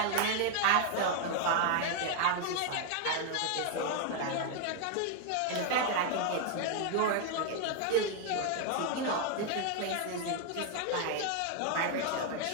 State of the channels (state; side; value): different; both; correlation 0.01